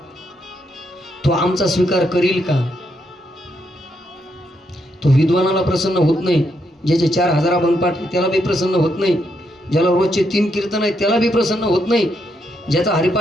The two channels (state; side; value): normal; both; correlation 0.78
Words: तो आमचा स्वीकार करील का. तो विद्वानाला प्रसन्न होत नाही, ज्याचे 4000 अभंगपाठ त्याला बी प्रसन्न होत नाही, ज्याला रोजचे 3 कीर्तन आहे त्याला बी प्रसन्न होत नाही, ज्याचा